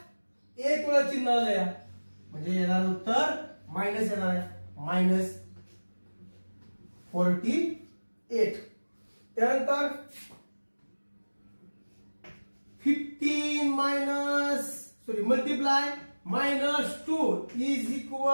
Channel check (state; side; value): inverted; both; correlation -1.00